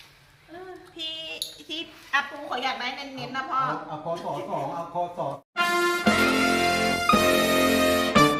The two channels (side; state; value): both; identical; correlation 1.00